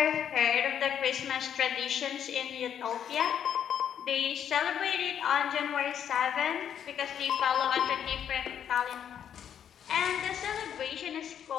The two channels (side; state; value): right; quieter; 9.0 dB